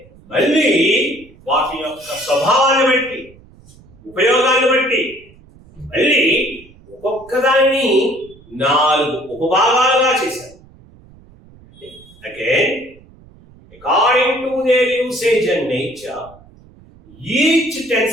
మళ్ళీ వాటి యొక్క స్వభావాన్ని బట్టి, ఉపయోగాన్ని బట్టి మళ్ళీ ఒక్కొక్కదాన్ని 4 ఉపభాగాలుగా చేశారు. Again, according to their usage and nature, each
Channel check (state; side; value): noise; right; rumble, 25 dB below the sound